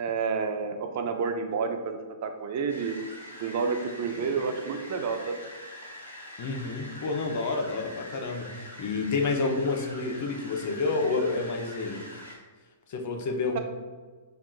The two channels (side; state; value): both; inverted; correlation -0.34